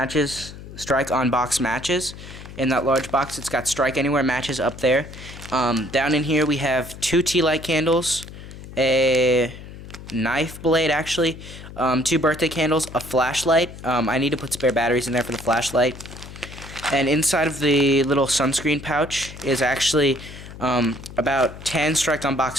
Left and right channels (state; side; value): noise; left; hum, 14 dB below the sound